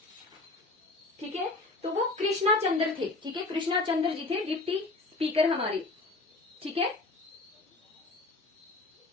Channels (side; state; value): right; quieter; 3.3 dB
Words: ठीक है, तो वो कृष्णा चंद्र थे। ठीक है, कृष्णा चंद्र जी थे डिप्टी स्पीकर हमारे। ठीक है,